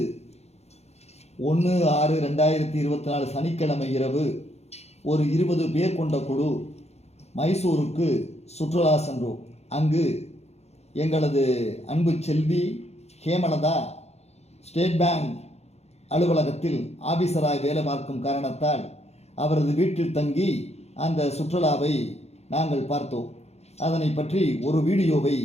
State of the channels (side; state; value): right; late; 0.31 ms